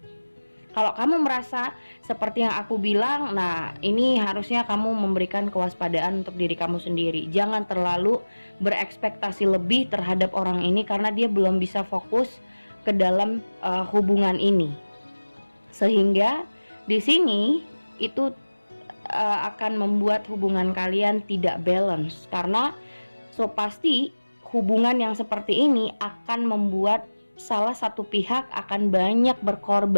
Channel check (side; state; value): both; inverted; correlation -1.00